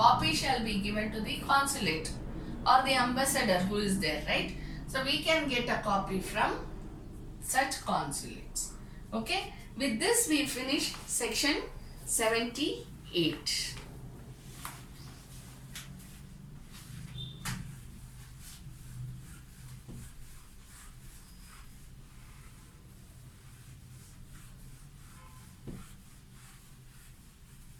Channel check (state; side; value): identical; both; correlation 1.00